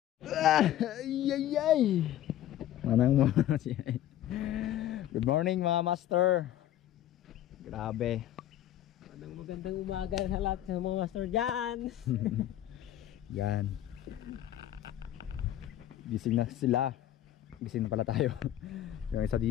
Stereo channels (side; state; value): right; quieter; 12.4 dB